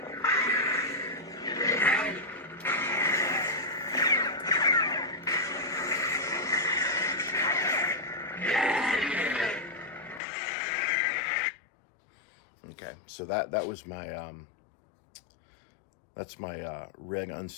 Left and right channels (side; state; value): right; drops out; at 10.2 s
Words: Okay, so that was my that's my red